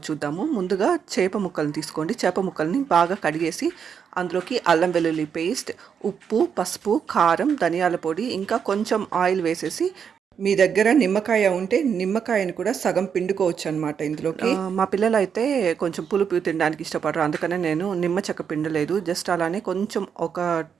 చూద్దాము. ముందుగా చేప ముక్కల్ని తీసుకోండి. చేప ముక్కల్ని బాగా కడిగేసి అందులోకి అల్లం వెల్లుల్లి పేస్ట్, ఉప్పు, పసుపు, కారం, ధనియాల పొడి, ఇంకా కొంచెం ఆయిల్ వేసేసి, మీ దగ్గర నిమ్మకాయ ఉంటే నిమ్మకాయని కూడా సగం పిండుకోవచ్చు అనమాట ఇందులోకి. మా పిల్లలు అయితే కొంచెం పులుపు తినడానికి ఇష్టపడరు, అందుకనే నేను నిమ్మ చెక్క పిండలేదు. జస్ట్ అలానే కొంచెం ఒక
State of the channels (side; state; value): left; quieter; 7.2 dB